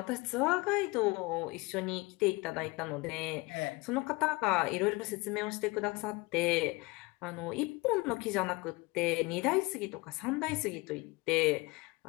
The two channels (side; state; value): right; quieter; 24.3 dB